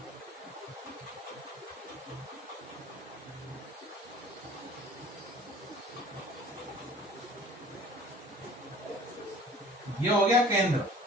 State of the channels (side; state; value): both; normal; correlation 0.47